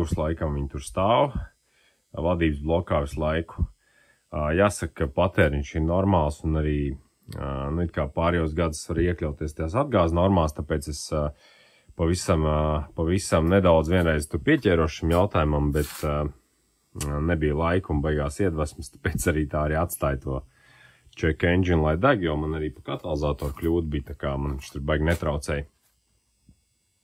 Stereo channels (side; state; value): both; identical; correlation 1.00